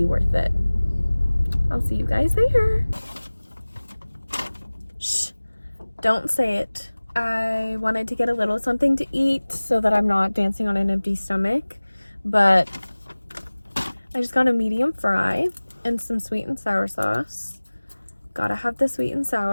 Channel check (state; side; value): inverted; both; correlation -1.00